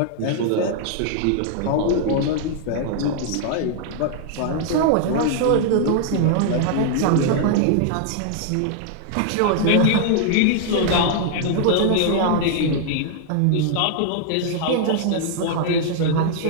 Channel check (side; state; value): both; different; correlation -0.01